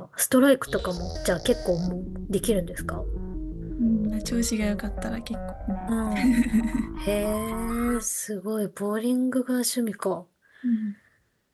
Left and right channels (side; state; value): both; identical; correlation 1.00